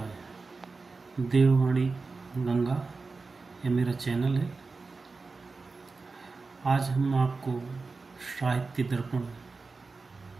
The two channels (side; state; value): left; quieter; 4.1 dB